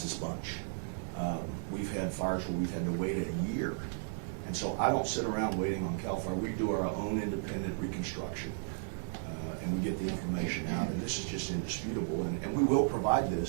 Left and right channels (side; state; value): left; silent; digital silence